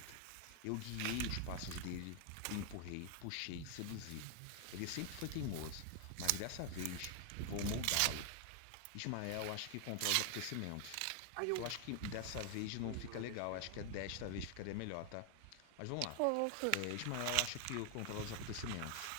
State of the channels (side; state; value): both; different; correlation 0.00